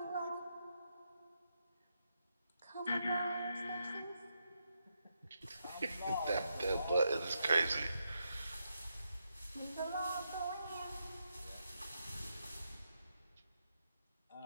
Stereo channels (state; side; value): inverted; both; correlation -0.82